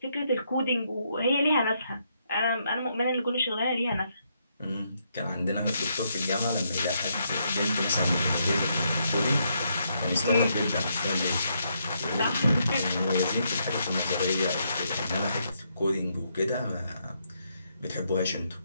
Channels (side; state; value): both; inverted; correlation -0.77